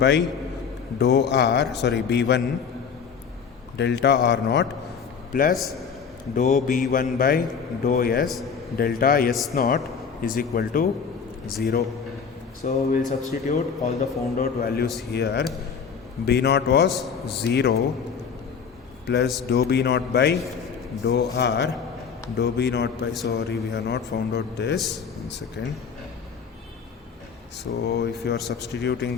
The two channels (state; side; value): quieter; right; 6.4 dB